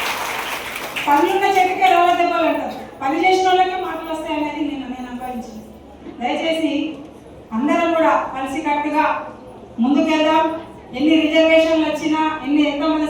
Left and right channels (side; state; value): both; identical; correlation 1.00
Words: పనులున్న చెట్టుకే రాళ్ళ దెబ్బలు అంటారు, పని చేసిన వాళ్ళకే మాటలు వస్తాయనేది నేను అనుభవించింది. దయచేసి అందరం కూడా కలిసికట్టుగా ముందుకెళ్దాం. ఎన్ని రిజర్వేషన్లు వచ్చినా ఎంతమంది